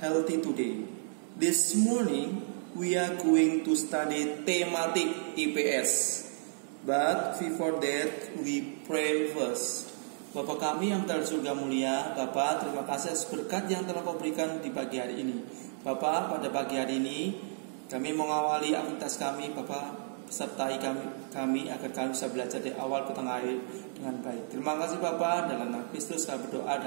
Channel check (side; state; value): left; silent; digital silence